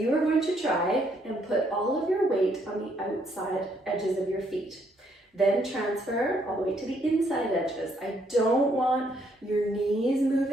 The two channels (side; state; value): both; normal; correlation 0.71